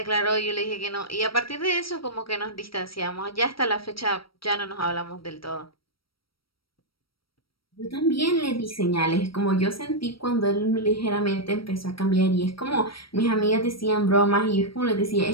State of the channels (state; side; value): late; right; 0.75 ms